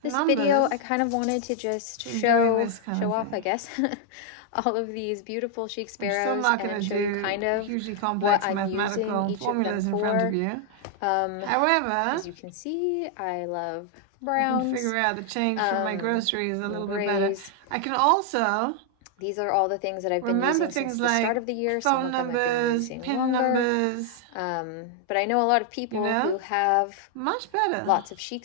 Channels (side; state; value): both; different; correlation 0.00